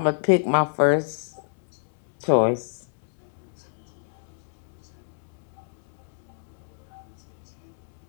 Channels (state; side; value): silent; right; digital silence